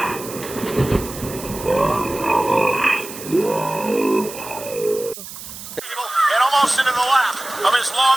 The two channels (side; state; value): right; noise; hiss, 12 dB below the sound